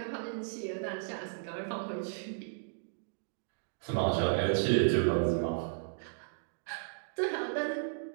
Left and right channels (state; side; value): silent; left; digital silence